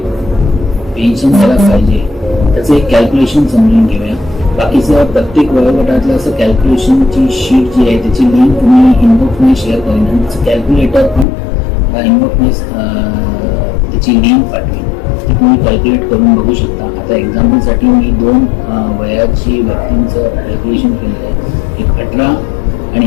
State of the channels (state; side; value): drops out; right; at 11.2 s